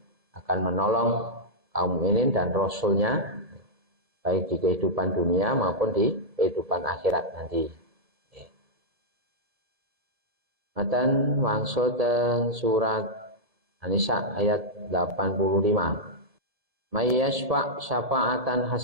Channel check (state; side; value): late; left; 1.7 ms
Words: akan menolong kaum mukminin dan rasulnya baik di kehidupan dunia maupun di kehidupan akhirat nanti. Matan wangsul teng surat An-Nisa ayat 85. May yashfa' syafa'atan